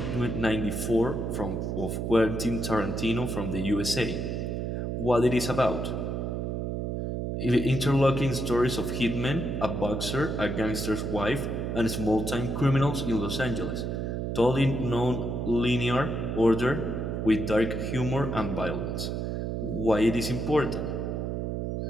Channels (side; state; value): right; noise; hum, 2 dB below the sound